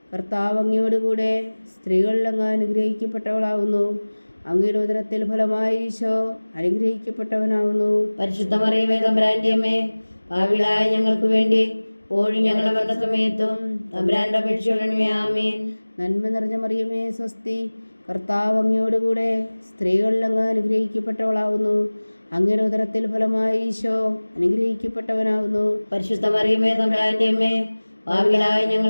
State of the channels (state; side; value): inverted; both; correlation -1.00